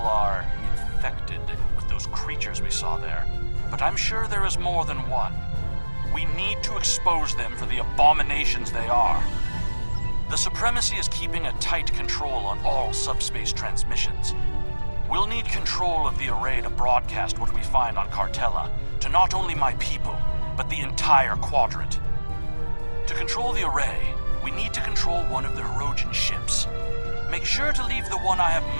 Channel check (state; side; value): inverted; both; correlation -1.00